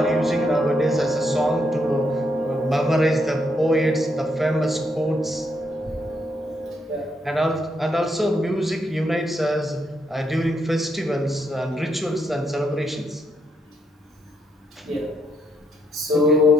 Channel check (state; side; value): normal; both; correlation 0.77